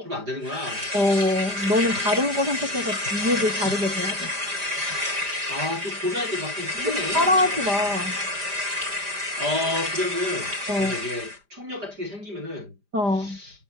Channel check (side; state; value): left; late; 5.0 ms